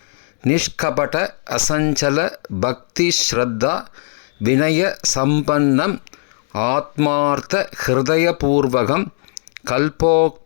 நிஷ்கபட அசஞ்சல பக்தி ஸ்ரத்தா வினய சம்பன்னம் ஆத்மார்த்த ஹிருதயபூர்வகம்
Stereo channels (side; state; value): right; silent; 65 dB below the other